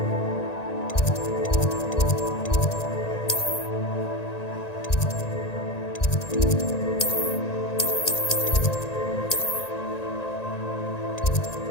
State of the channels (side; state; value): right; late; 1.8 ms